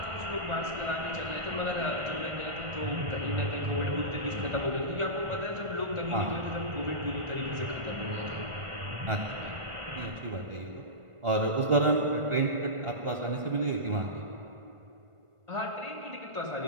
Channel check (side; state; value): left; late; 1.5 ms